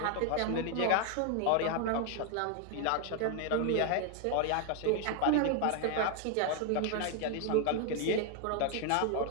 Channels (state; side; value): different; both; correlation 0.00